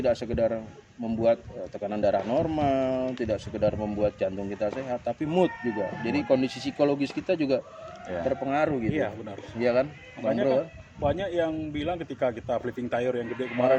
sekedar membuat tekanan darah normal, tidak sekedar membuat jantung kita sehat, tapi mood juga. Jadi kondisi psikologis kita juga Iya. terpengaruh gitu. Iya, benar. Iya kan? Bang Makanya Bro, kan banyak yang bilang ketika kita flipping tire yang gede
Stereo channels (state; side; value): identical; both; correlation 1.00